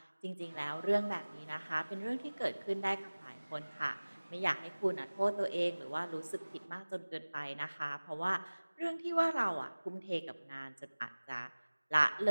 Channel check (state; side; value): inverted; both; correlation -1.00